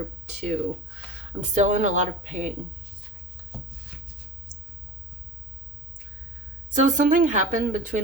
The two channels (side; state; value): both; normal; correlation 0.38